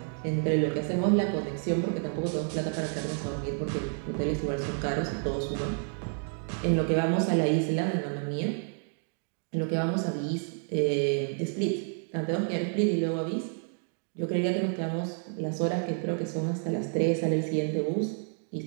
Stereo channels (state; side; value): silent; left; 58 dB below the other